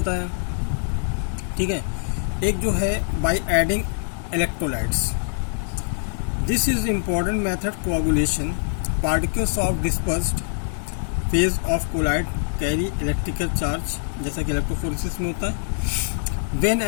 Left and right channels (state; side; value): silent; right; digital silence